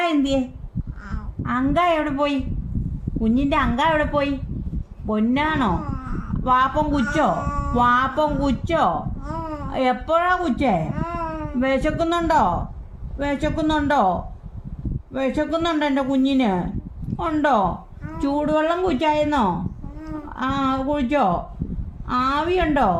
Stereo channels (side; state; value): both; identical; correlation 1.00